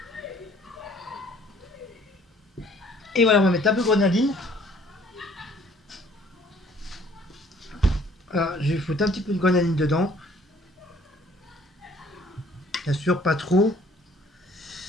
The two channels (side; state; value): both; normal; correlation 0.58